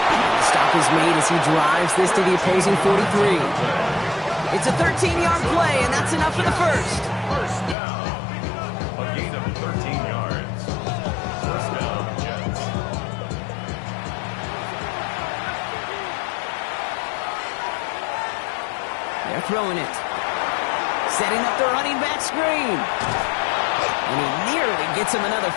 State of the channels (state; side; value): drops out; right; at 7.8 s